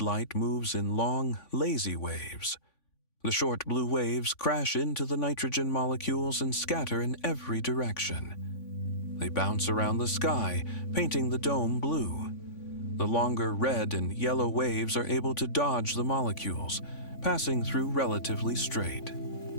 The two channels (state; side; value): late; right; 3.5 ms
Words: light moves in long, lazy waves. The short blue waves crash into the nitrogen molecules and scatter in every direction. They bounce around the sky, painting the dome blue. The longer red and yellow waves are able to dodge the molecules, passing through relatively straight.